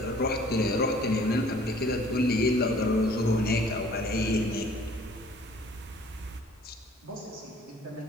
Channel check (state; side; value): normal; both; correlation 0.54